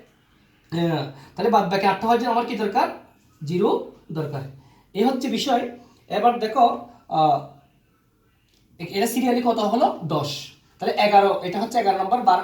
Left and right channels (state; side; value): identical; both; correlation 1.00